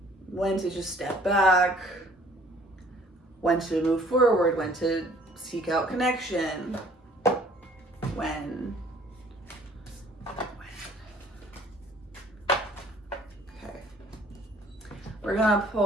When to just step back, when to move forward, when to seek out connection, when. Okay. We're gonna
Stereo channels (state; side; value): normal; both; correlation 0.56